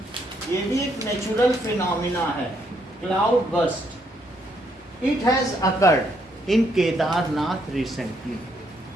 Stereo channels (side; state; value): both; normal; correlation 0.73